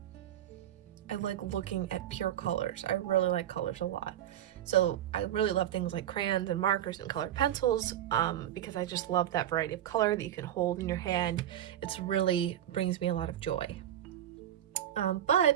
I like looking at pure colors. I really like colors a lot. So I really love things like crayons and markers and colored pencils because I just love that variety of color that you can hold in your hand. It's really brings me a lot of joy.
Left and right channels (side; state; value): left; quieter; 11.5 dB